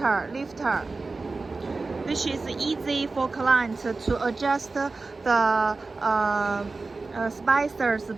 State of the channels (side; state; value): left; quieter; 3.7 dB